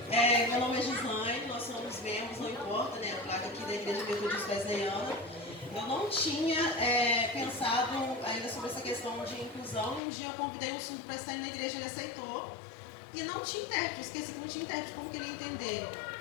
Meu nome é Gislaine, nós somos membros, não importa, né? A placa aqui da Igreja Metodista Wesleyana. Eu não tinha pensado ainda sobre essa questão de inclusão. Um dia eu convidei um surdo para estar na igreja, ele aceitou. E não tinha intérprete, esqueci que não tinha intérprete, como que ele ia entender?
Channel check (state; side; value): drops out; right; at 10.0 s